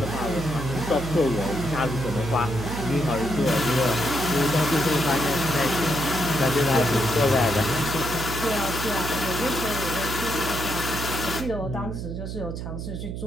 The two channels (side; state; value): right; noise; hum, 6 dB below the sound